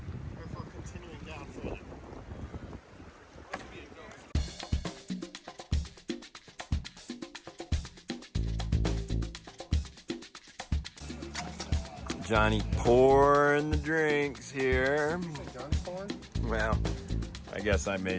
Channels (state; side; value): identical; both; correlation 1.00